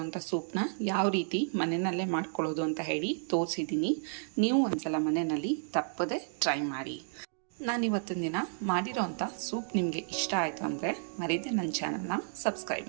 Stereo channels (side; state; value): left; silent; digital silence